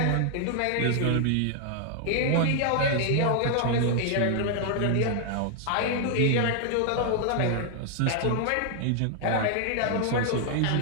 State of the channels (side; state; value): both; different; correlation 0.00